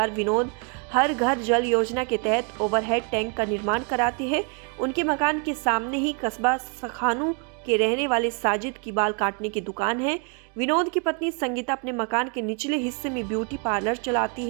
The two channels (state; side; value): quieter; left; 36.0 dB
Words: विनोद हर घर जल योजना के तहत ओवरहेड टैंक का निर्माण कराते हैं। उनके मकान के सामने ही कस्बा सखानू के रहने वाले साजिद की बाल काटने की दुकान है। विनोद की पत्नी संगीता अपने मकान के निचले हिस्से में ब्यूटी पार्लर चलाती